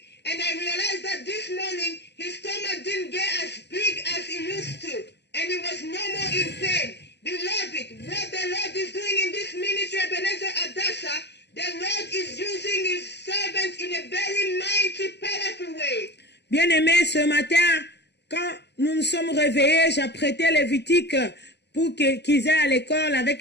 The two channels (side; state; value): right; late; 0.50 ms